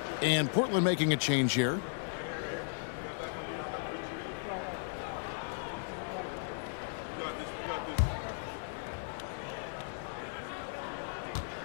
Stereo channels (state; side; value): silent; right; 54 dB below the other